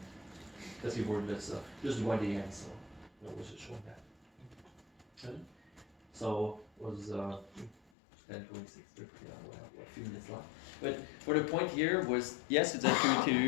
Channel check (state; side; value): drops out; right; at 7.8 s